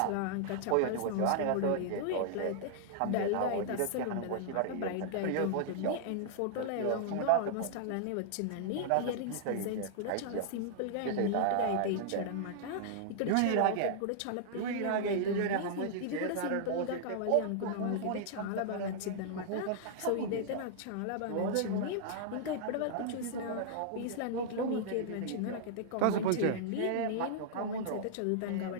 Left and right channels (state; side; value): different; both; correlation -0.01